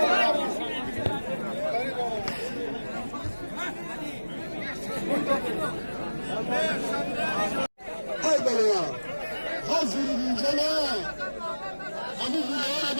Hayvalar! Hazır incele! Ama buraya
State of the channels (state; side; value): inverted; both; correlation -1.00